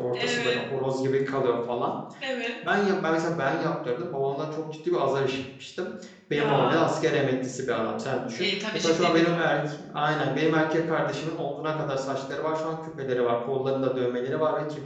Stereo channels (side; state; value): both; identical; correlation 1.00